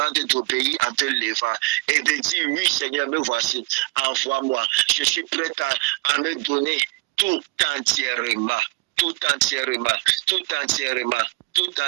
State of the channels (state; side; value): quieter; left; 23.1 dB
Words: d'obéir en te levant et de dire, oui Seigneur, me voici, envoie-moi. Je suis prêt à me donner tout entièrement. Tout entièrement, tout entièrement, tout